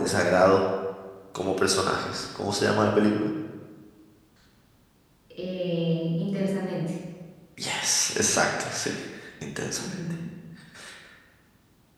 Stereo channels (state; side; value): identical; both; correlation 1.00